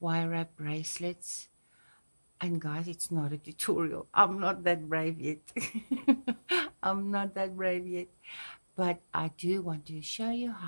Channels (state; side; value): inverted; both; correlation -1.00